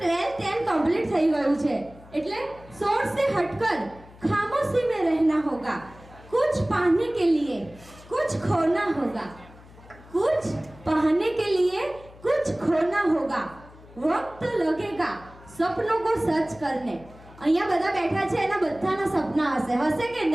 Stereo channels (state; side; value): noise; left; hum, 22 dB below the sound